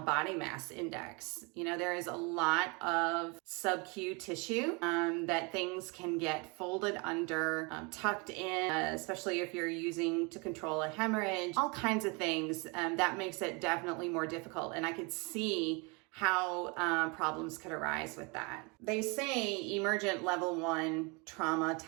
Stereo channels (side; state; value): left; quieter; 29.9 dB